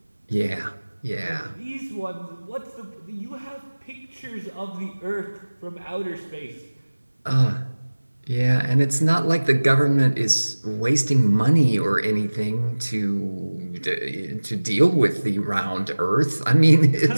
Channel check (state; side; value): inverted; both; correlation -1.00